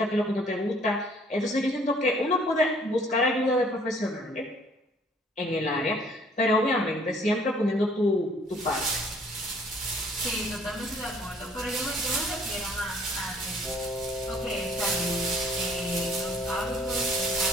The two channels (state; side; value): normal; both; correlation 0.59